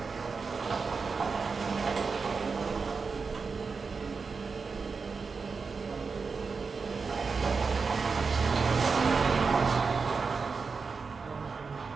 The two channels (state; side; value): quieter; left; 4.9 dB